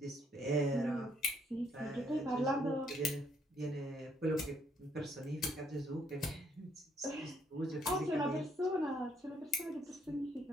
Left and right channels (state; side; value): normal; both; correlation 0.70